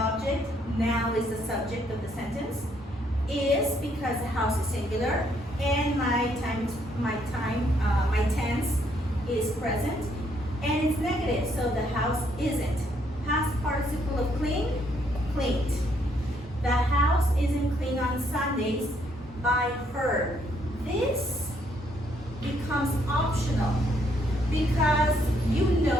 now is the subject of the sentence. Is because the house is singular, and my tense is present, and it's negative, so the house isn't. Past participle of clean, cleaned. The house isn't cleaned on Sundays by her. This becomes optional because you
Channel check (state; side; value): normal; both; correlation 0.70